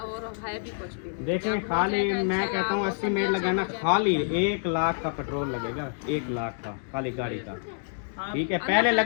है भी कुछ भी नहीं। देखें, जब हो खाली जाएगा मैं इंशाल्लाह कहता हूँ वो 80 सब मिनट अच्छा लगाना, हो जाएगा। खाली 1 लाख का पेट्रोल लगेगा, 1 लाख का खाली गाड़ी का, हाँ, ठीक है। पहले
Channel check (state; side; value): silent; right; digital silence